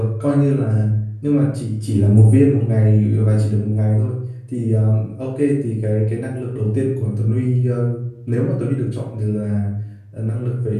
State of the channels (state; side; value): identical; both; correlation 1.00